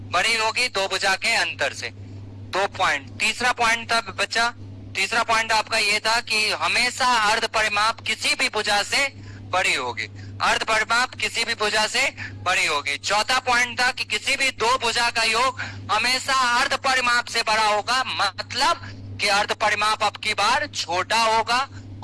बड़ी होगी 2 भुजा के अंतर से। 2 पॉइंट। तीसरा पॉइंट था बच्चा, तीसरा पॉइंट आपका ये था कि हमेशा अर्ध परिमाप किसी भी भुजा से बड़ी होगी, अर्ध परिमाप किसी भी भुजा से बड़ी होगी। चौथा पॉइंट था कि किसी भी 2 भुजा का योग हमेशा अर्ध परिमाप से बड़ा होगा, मतलब कि अर्ध परिमाप अब की बार छोटा होगा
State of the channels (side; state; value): both; identical; correlation 1.00